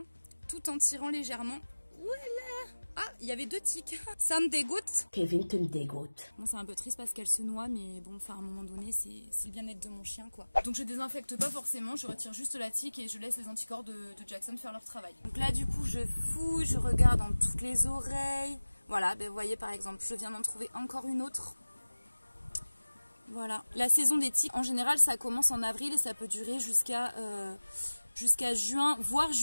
tout en tirant légèrement. Voilà. Ah, il y avait 2 tiques. Ça me dégoûte. Kevin, tu me dégoûtes. Bon, c'est un peu triste parce qu'elle se noie, mais bon, enfin, à un moment donné, c'est le bien-être de mon chien, quoi. Donc je désinfecte pas forcément, je retire juste la tique et je laisse les anticorps de Jackson faire leur travail. Donc là, du coup, je fouille, je regarde dans toutes les oreilles. Voilà, ben, vous voyez, par exemple, je viens d'en trouver encore une autre. Voilà. La saison des tiques, en général, ça commence en avril et ça peut durer jusqu'à juin, voire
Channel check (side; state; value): both; inverted; correlation -1.00